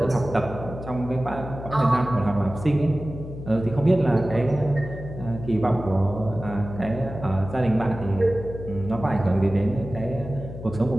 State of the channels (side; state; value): left; noise; hum, 11 dB below the sound